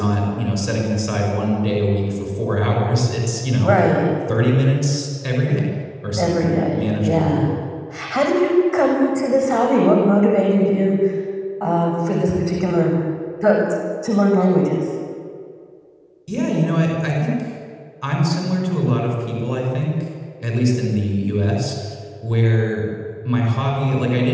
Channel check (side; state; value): both; identical; correlation 1.00